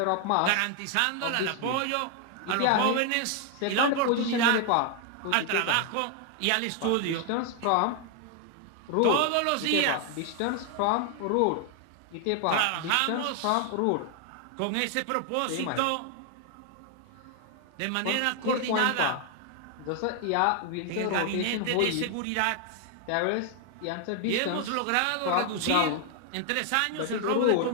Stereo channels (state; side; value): different; both; correlation 0.00